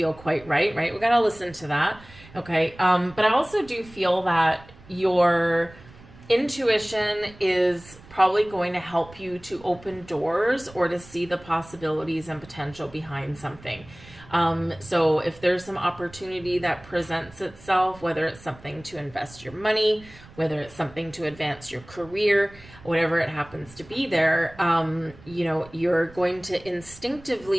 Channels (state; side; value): noise; right; rumble, 21 dB below the sound